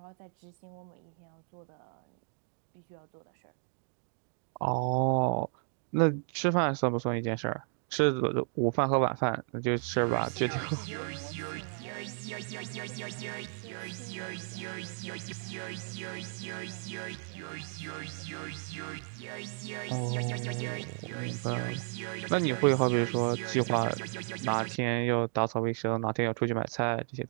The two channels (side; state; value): left; silent; 55 dB below the other